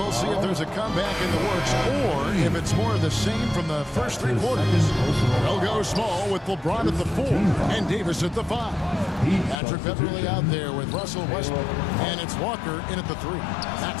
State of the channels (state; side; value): drops out; right; at 9.6 s